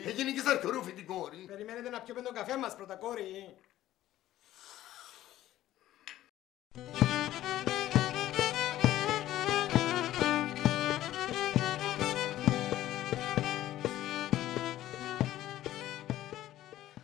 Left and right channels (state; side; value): quieter; right; 14.0 dB